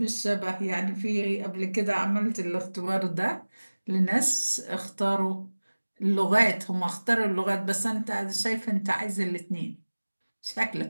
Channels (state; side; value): inverted; both; correlation -1.00